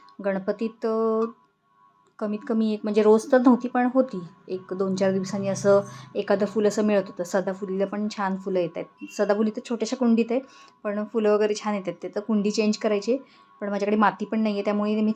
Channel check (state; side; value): identical; both; correlation 1.00